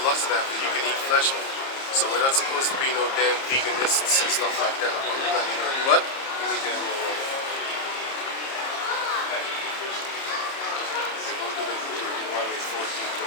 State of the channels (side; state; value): right; late; 30 ms